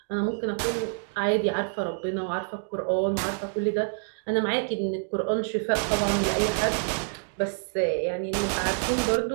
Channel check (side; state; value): left; silent; digital silence